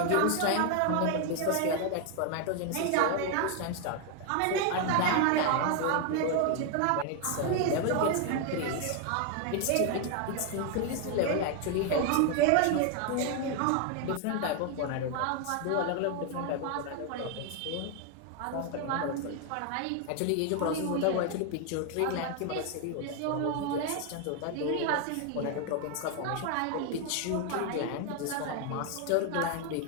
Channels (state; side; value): different; both; correlation 0.01